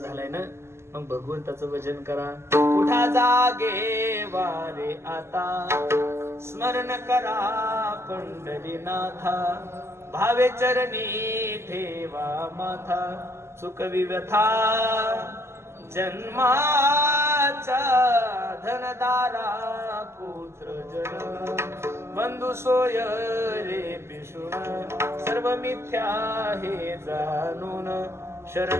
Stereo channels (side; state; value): left; late; 0.13 ms